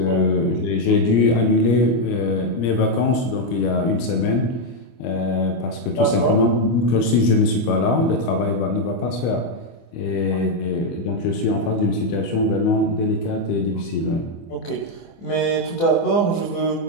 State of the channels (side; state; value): right; late; 25 ms